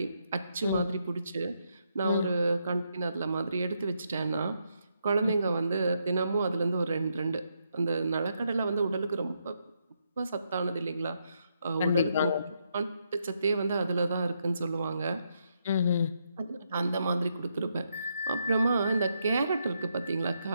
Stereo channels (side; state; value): both; inverted; correlation -0.79